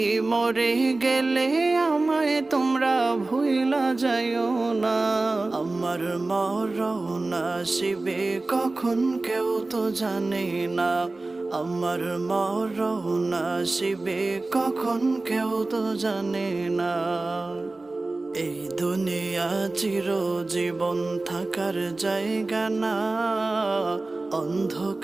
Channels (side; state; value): left; quieter; 3.2 dB